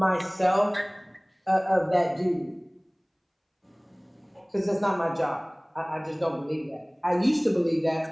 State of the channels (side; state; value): both; identical; correlation 1.00